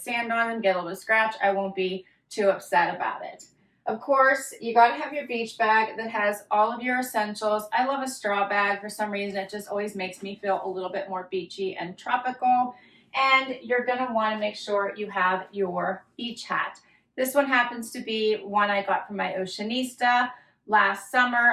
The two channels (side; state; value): both; identical; correlation 1.00